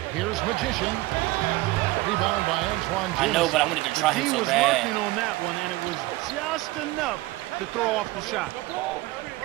Here's Magician. Rebound by Antoine Jameson. I know, but I wanted to try him so He was bad. working on that one, and it was just enough to throw off the shot.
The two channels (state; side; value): quieter; left; 19.4 dB